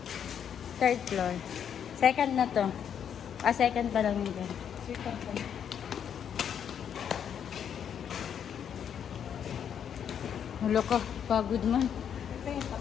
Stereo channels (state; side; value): quieter; right; 8.4 dB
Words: Third floor. Second na to. Second pa lang yun. Second pa. Hulo ko, pagod man. Ito yung